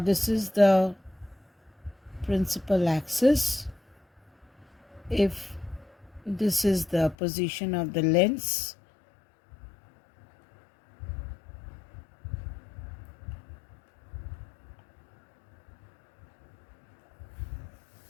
is the principal axis. If this is the position of the lens,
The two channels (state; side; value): drops out; right; at 7.2 s